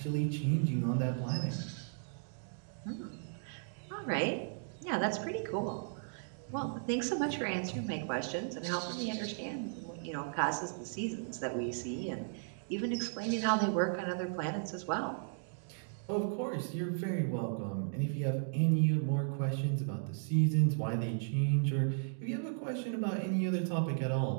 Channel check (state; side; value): silent; left; digital silence